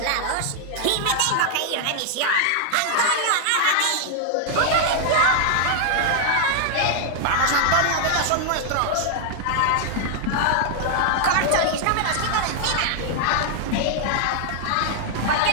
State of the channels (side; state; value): both; different; correlation 0.00